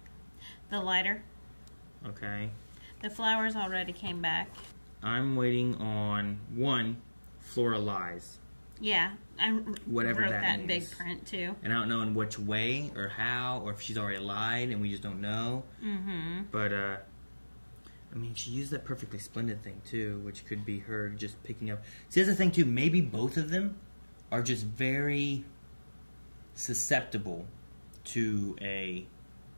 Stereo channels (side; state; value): both; inverted; correlation -1.00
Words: The lighter. Okay. The flowers already came back. I'm waiting on one, Flora lies. Yeah, I Whatever wrote that that in means. big print too. And I don't know in which way or how, or if she's already lied and we just don't know. Mm-hmm. But, I mean, she used that perfectly splendid thing too, which could be her just picking up. See, that's the thing too. Maybe both of them are just very susceptible to a,